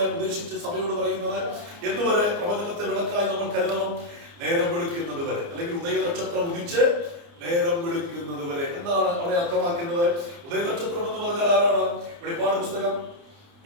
ഉദ്ദേശിച്ച് സഭയോട് പറയുന്നത്? എന്നുവരെ പ്രവചനത്തെ വിളക്കായി നമ്മൾ കരുതണം? നേരം വെളുക്കുന്നത് വരെ, അല്ലെങ്കിൽ ഉദയനക്ഷത്രം ഉദിച്ച് നേരം വെളുക്കുന്നത് വരെ. എന്താണ് അവിടെ അർത്ഥമാക്കുന്നത്? ഉദയനക്ഷത്രം എന്ന് പറഞ്ഞാൽ ആരാണ്? വെളിപ്പാട് പുസ്തകം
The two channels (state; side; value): late; left; 29 ms